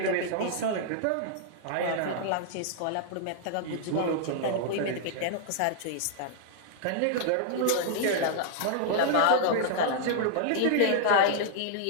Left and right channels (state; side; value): different; both; correlation -0.01